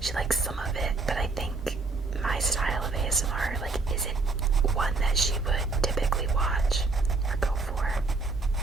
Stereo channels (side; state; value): left; quieter; 3.7 dB